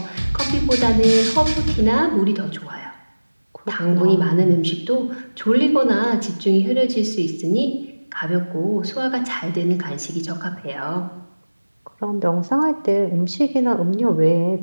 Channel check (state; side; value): inverted; both; correlation -1.00